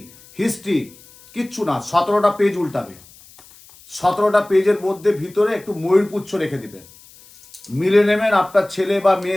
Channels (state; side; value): noise; left; hiss, 24 dB below the sound